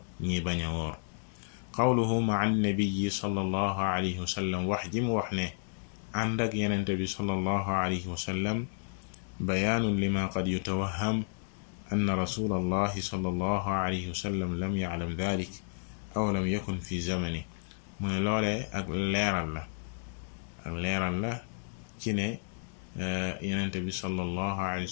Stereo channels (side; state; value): right; silent; digital silence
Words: ñi bañ a woor. qawluhu ma'a an-nabiyyi sallallahu alayhi wa sallam, wax ji mu wax ne ànd ak yenente bi sallallahu alayhi wa sallam, bayaanun lima qad yutawahham anna rasulallahi sallallahu alayhi wa sallam lam ya'lam dhalik aw lam yakun fi zamani. mu ne loolee ak leeral la ci ne yenente bi sallallahu alayhi